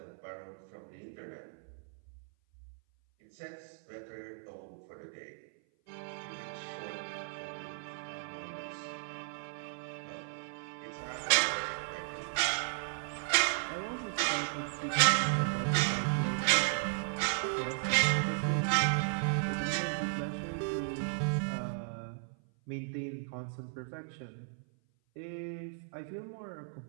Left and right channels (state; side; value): silent; left; 54 dB below the other